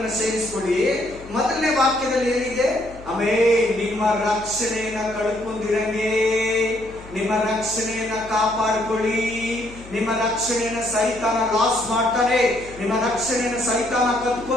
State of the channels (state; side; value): noise; left; hum, 18 dB below the sound